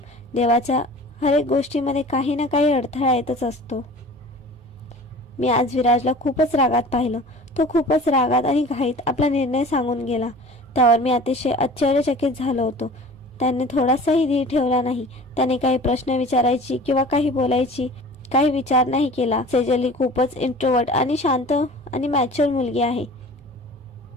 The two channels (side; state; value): both; normal; correlation 0.42